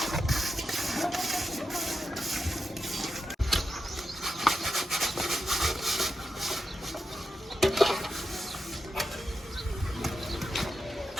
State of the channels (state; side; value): normal; both; correlation 0.89